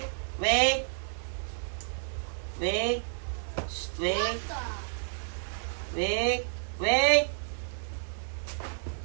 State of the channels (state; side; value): silent; left; 55 dB below the other